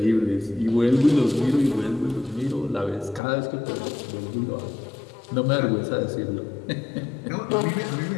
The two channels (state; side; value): drops out; right; at 3.2 s